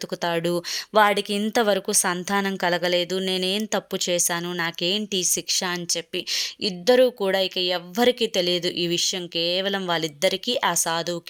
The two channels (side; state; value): both; identical; correlation 1.00